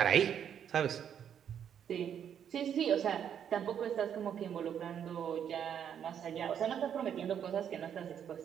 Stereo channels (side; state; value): left; quieter; 8.7 dB